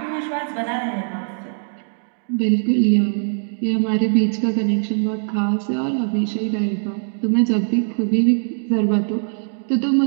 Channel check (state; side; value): silent; left; digital silence